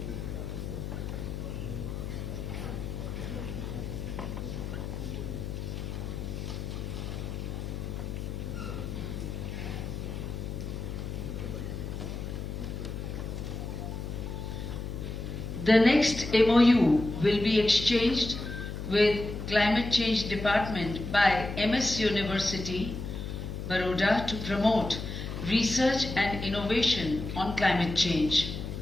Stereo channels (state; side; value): noise; left; hum, 6 dB below the sound